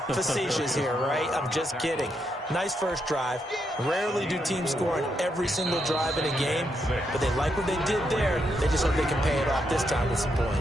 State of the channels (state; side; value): normal; both; correlation 0.80